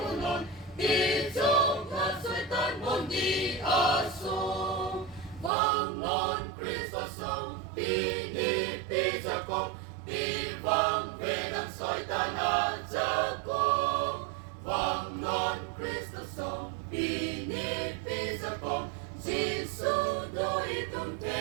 unon ti trong các soi tan bondi aso vang non Cristo song pinipi cha con ti vang về đằng soi tan a cha con vang non Cristo song pinipi cha con Giêsu đôi cùng thế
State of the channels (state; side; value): drops out; left; at 5.5 s